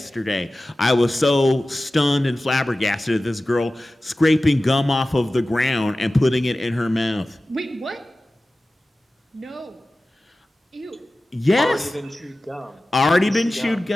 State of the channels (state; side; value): normal; both; correlation 0.96